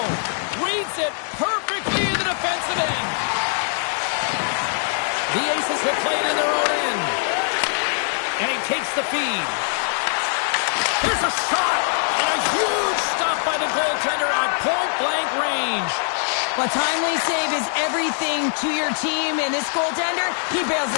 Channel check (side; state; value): right; silent; 64 dB below the other